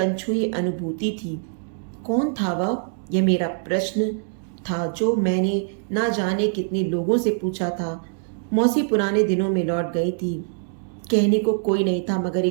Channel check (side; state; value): left; silent; digital silence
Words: अनुभूति थी। कौन था वह? यह मेरा प्रश्न था जो मैंने ना जाने कितने लोगों से पूछा था। मौसी पुराने दिनों में लौट गई थी। कहने को कोई नहीं था मगर